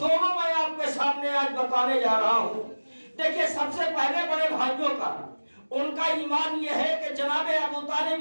میں آپ کے سامنے آج بتانے جا رہا ہوں۔ دیکھیں سب سے پہلے بڑے بھائیوں کا، ان کا ایمان یہ ہے کہ جناب ابو طالب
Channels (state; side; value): inverted; both; correlation -1.00